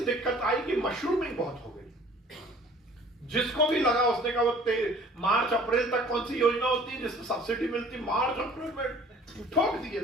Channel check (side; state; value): both; normal; correlation 0.51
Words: दिक्कत आई कि मशरूमिंग बहुत हो गई। जिसको भी लगा उसने कहा वो मार्च अप्रैल तक कौन सी योजना होती है जिसमें सब्सिडी मिलती, मार्च अप्रैल में ठोक दिए